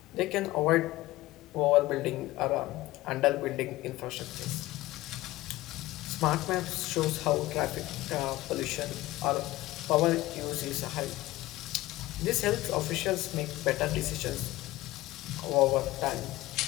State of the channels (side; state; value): right; quieter; 17.8 dB